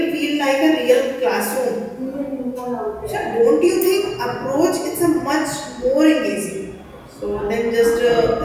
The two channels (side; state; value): both; identical; correlation 1.00